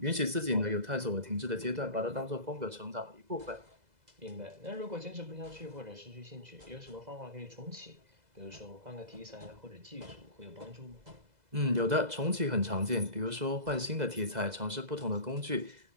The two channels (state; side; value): late; left; 2.0 ms